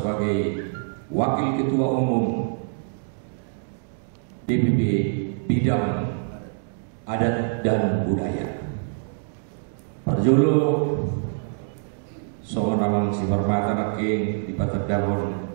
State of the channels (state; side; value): silent; left; digital silence